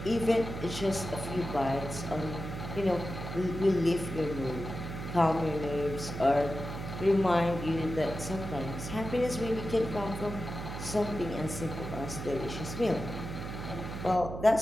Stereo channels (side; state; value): right; noise; hum, 7 dB below the sound